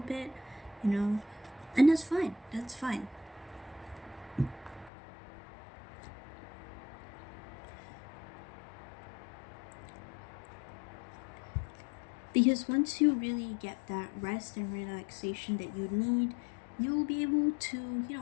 bit, and that's fine. That's fine. Because once you really get that rest and relaxation that you need, you'll be able to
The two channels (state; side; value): drops out; right; at 4.9 s